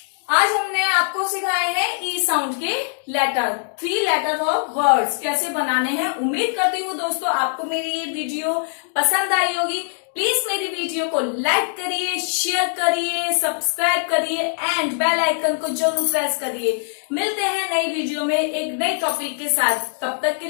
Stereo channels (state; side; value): silent; right; digital silence